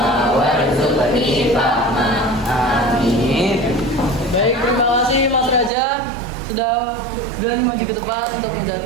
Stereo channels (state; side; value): drops out; left; at 5.7 s